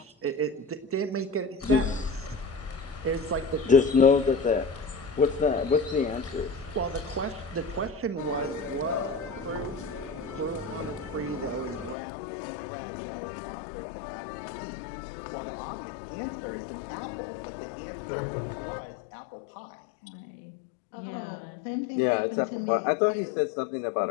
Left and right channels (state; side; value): drops out; right; at 12.0 s